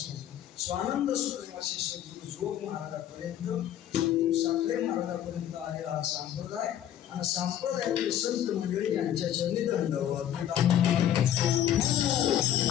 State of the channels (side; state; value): right; quieter; 10.9 dB